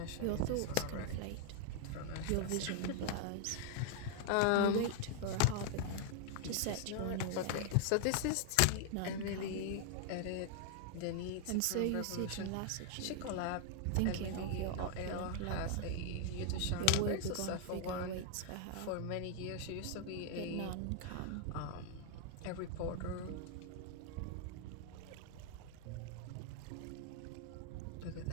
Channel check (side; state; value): both; different; correlation 0.00